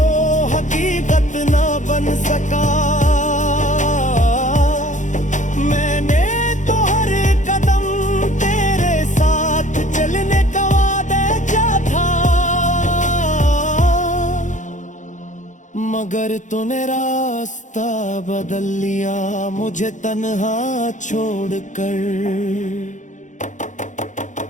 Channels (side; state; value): right; late; 0.36 ms